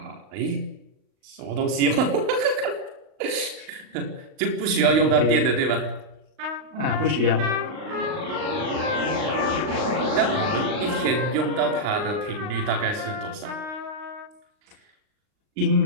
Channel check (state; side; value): late; left; 39 ms